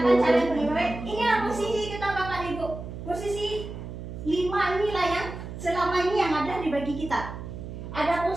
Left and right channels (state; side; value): noise; right; hum, 9 dB below the sound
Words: cara yang paling baik? Inilah posisi kita Bapak Ibu. Posisi 5 inilah yang selama ini yang ada di bagi kita. Ada